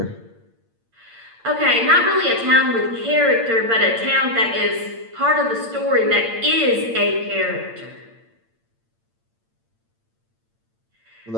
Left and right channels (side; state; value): left; late; 8.8 ms